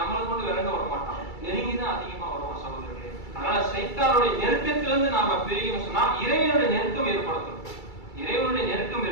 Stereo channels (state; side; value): late; right; 2.3 ms